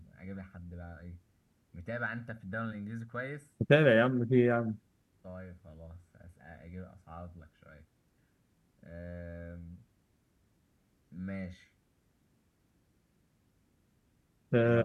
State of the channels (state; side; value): identical; both; correlation 1.00